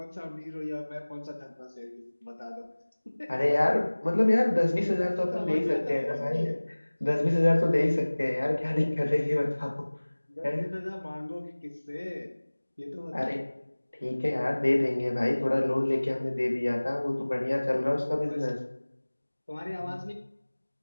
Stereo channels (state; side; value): inverted; both; correlation -1.00